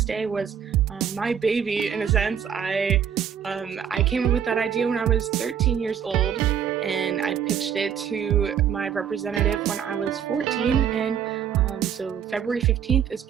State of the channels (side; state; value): left; quieter; 8.4 dB